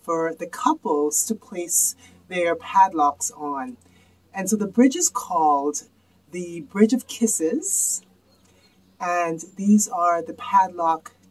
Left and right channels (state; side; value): identical; both; correlation 1.00